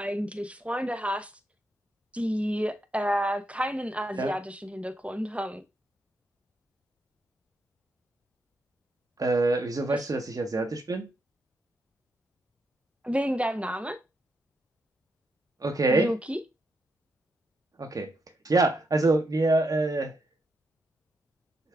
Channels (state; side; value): normal; both; correlation 0.81